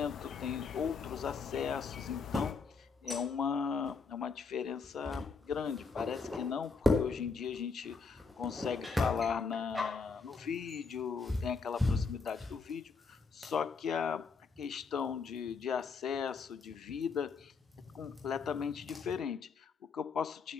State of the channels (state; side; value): quieter; right; 4.9 dB